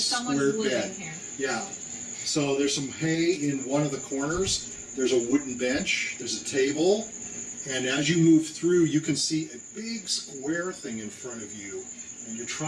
someone's square living bed. here. Yeah. So there's some hay in one of the corners. There's a wooden bench. There's a table. And as you move through, you can see a big square thing in front of you. And you're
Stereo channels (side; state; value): both; identical; correlation 1.00